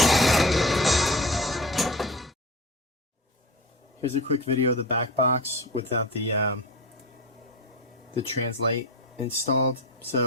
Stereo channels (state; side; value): normal; both; correlation 0.28